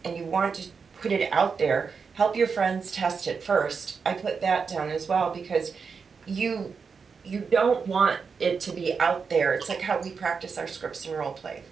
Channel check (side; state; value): left; quieter; 5.5 dB